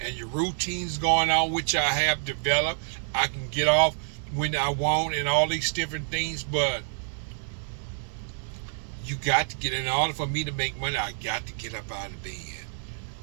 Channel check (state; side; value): silent; left; digital silence